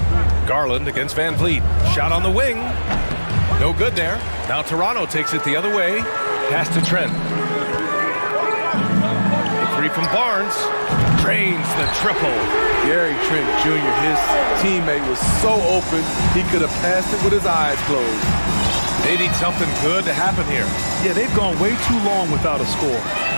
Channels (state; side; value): inverted; both; correlation -1.00